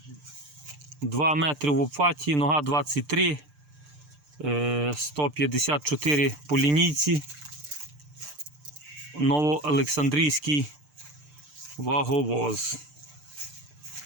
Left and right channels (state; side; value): late; left; 6.7 ms